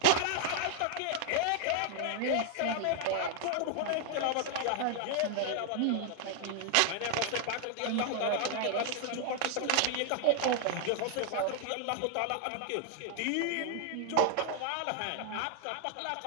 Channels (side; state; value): both; different; correlation 0.00